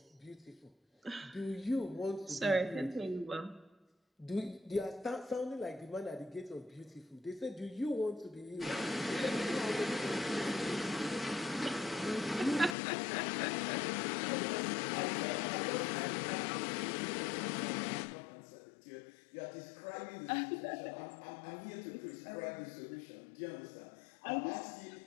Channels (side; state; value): right; drops out; at 12.8 s